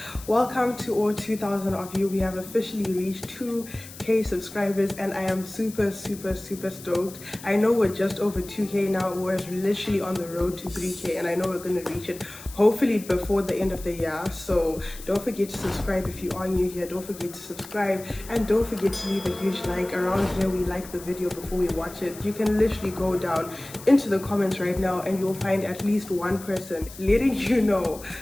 Welcome to all 2,000 of you. We have officially reached 2k subscribers and I am super stoked. I know we're just over 2k now. We're literally on the road to 3k and I know we're going to reach it hopefully before the end of the year. So don't forget to subscribe if you are new here. Don't forget to subscribe and don't forget to leave a huge like. Around here we like the video before we watch it. You can literally go down into the comments right now and you'll find at least one person letting you know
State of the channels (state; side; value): noise; left; hiss, 16 dB below the sound